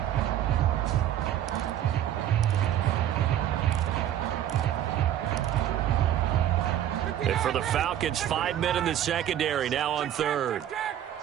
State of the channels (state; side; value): quieter; left; 11.2 dB